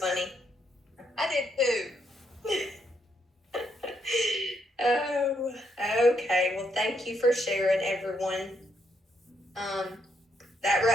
I did too. Oh, okay. Well, thank you for sharing, everyone. That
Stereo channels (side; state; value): both; normal; correlation 0.76